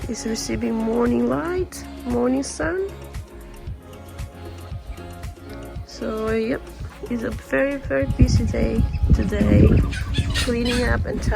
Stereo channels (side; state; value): both; identical; correlation 1.00